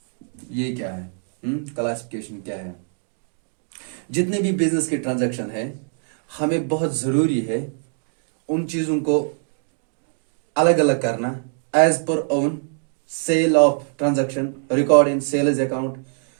ये क्या है? क्लासिफिकेशन क्या है? जितने भी बिजनेस के ट्रांजैक्शन है, हमें बहुत जरूरी है उन चीजों को अलग अलग करना as per own. Sale of transaction record in sales account,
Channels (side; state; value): left; silent; 59 dB below the other